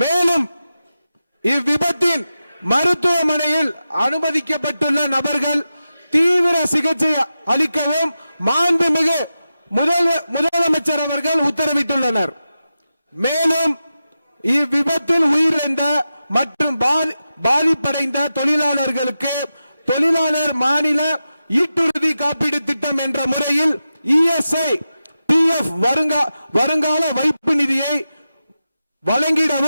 இவ்விபத்தின் மருத்துவமனையில் அனுமதிக்கப்பட்டுள்ள நபர்கள் தீவிர சிகிச்சை அளிக்கவும் மாண்புமிகு முதலமைச்சர் அவர்கள் உத்தரவிட்டுள்ளனர். மேலும் இவ்விபத்தில் உயிரிழந்த மற்றும் பாதிப்படைந்த தொழிலாளர்களுக்கு தொழிலாளர் மாநில ஈட்டுறுதி காப்பீடு திட்டம் என்ற முறையில் ESI PF வருங்கால வைப்பு நிதியை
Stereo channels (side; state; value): both; inverted; correlation -0.91